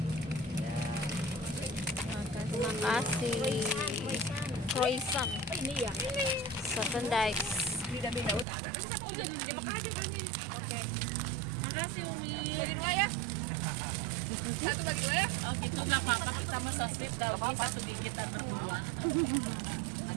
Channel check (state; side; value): drops out; left; at 8.5 s